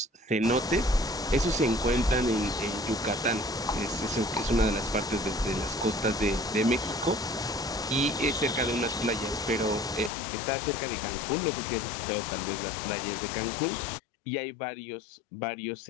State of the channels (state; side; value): drops out; right; at 10.1 s